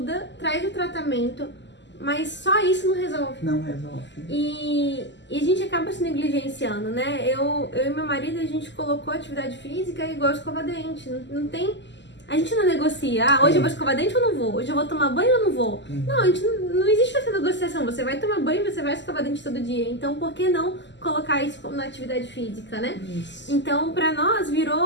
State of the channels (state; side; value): late; right; 0.52 ms